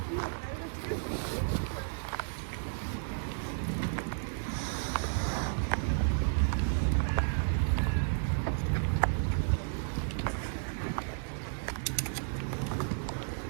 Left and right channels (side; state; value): left; silent; digital silence